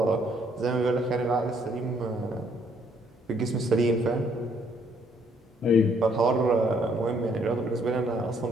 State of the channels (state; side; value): normal; both; correlation 0.67